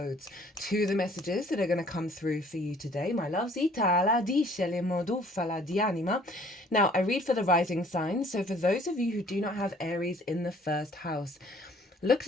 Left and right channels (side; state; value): both; normal; correlation 0.56